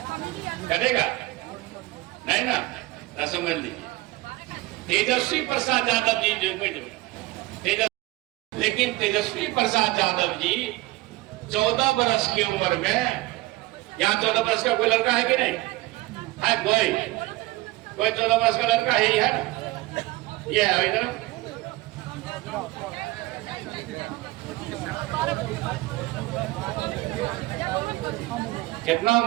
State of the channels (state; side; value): quieter; left; 19.7 dB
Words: करेगा नहीं ना? तो समझ लीजिए तेजस्वी प्रसाद यादव जी जो लेकिन तेजस्वी प्रसाद यादव जी 14 वर्ष की उम्र में, यहाँ 14 वर्ष का कोई लड़का है कि नहीं है? कोई 14 वर्ष का लड़का है ही है ना? ये है इधर। कितना